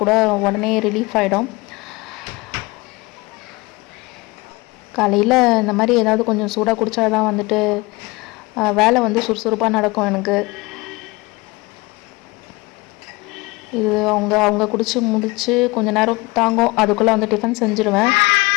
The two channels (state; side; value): quieter; right; 23.5 dB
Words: கூட உடனே ரிலீஃப் ஆகிடும். காலையில் இந்த மாதிரி ஏதாவது கொஞ்சம் சூடாக குடித்தா தான் வந்துட்டு வேலை வந்து சுறுசுறுப்பாக நடக்கும் எனக்கு. இது அவங்க குடிச்சு முடிச்சு கொஞ்சம் நேரம் தாங்கும், அதுக்குள்ளே வந்து டிஃபன் செஞ்சுருவேன்.